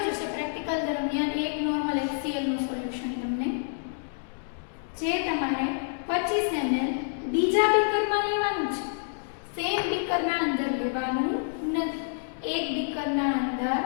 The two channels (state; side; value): silent; right; digital silence